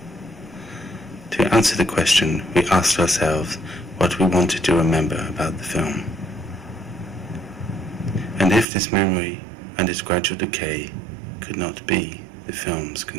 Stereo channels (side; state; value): left; drops out; at 8.7 s